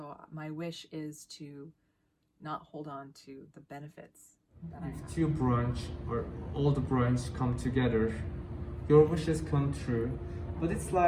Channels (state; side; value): identical; both; correlation 1.00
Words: my wish is to not hold on to the benefits that I have. If 2 branch or all the branch come together, your wishes come true. But it's